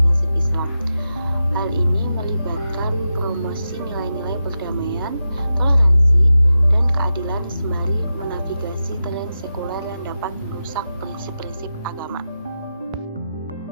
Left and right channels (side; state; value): both; inverted; correlation -0.90